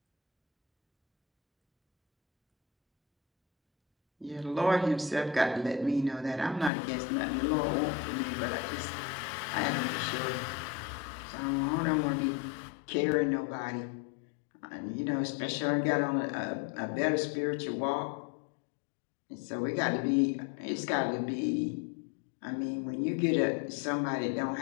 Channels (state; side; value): drops out; right; at 6.7 s